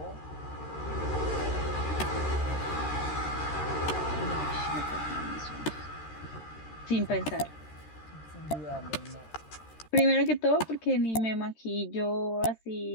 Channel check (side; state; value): right; late; 13 ms